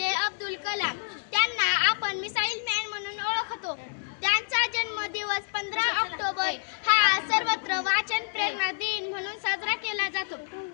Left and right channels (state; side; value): silent; right; digital silence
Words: अब्दुल कलाम, त्यांना आपण मिसाईल मॅन म्हणून ओळखतो. त्यांचा जन्मदिवस 15 ऑक्टोबर हा सर्वत्र वाचन प्रेरणा दिन म्हणून साजरा केला जातो.